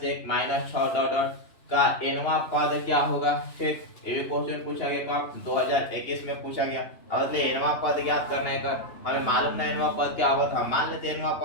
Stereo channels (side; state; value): right; late; 3.0 ms